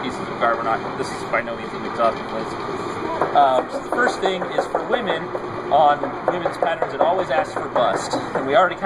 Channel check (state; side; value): noise; right; rumble, 23 dB below the sound